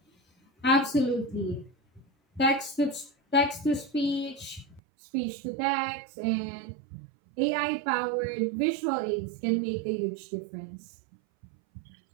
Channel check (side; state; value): left; drops out; at 4.8 s